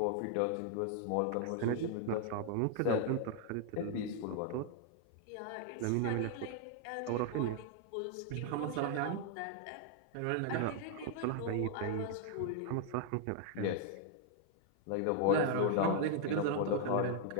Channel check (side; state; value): both; different; correlation 0.00